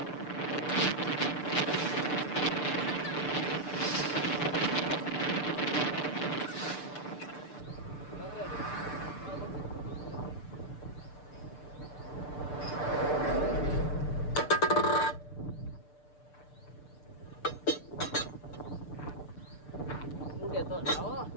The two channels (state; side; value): late; right; 6.8 ms